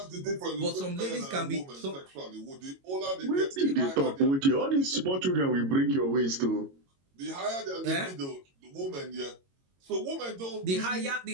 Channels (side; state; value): left; late; 22 ms